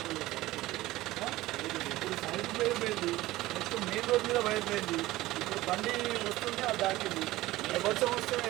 ఇప్పుడు సైడ్ వైర్ పోయింది, నెక్స్ట్ మెయిన్ రోడ్ మీద వైర్ పోయింది. ఇప్పుడు బండి వస్తుంటే అది దాటింది. వర్షం వస్తే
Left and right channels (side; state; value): left; quieter; 17.5 dB